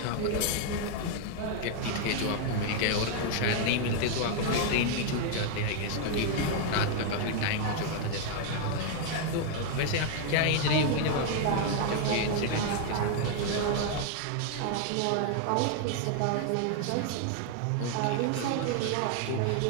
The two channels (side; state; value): both; different; correlation 0.00